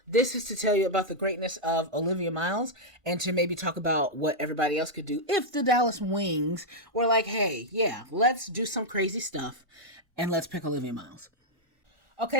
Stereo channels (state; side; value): late; left; 1.4 ms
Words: This is to tell you about the greatness of Olivia Miles and to maybe talk about what everybody else could do if the Dallas Wings were like, hey, yeah, let's do some crazy stuff and let's pick Olivia Miles.